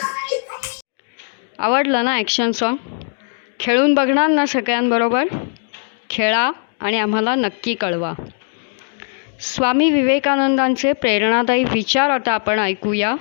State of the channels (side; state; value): right; silent; digital silence